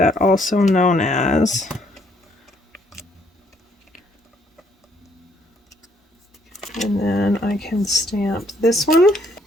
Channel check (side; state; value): both; normal; correlation 0.67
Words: also known as. And then I can stamp this one.